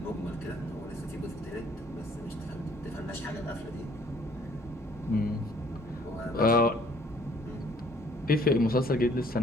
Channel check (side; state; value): both; normal; correlation 0.60